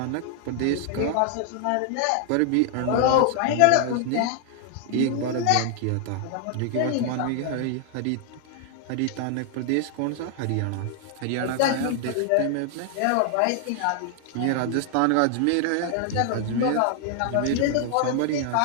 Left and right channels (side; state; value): both; different; correlation 0.00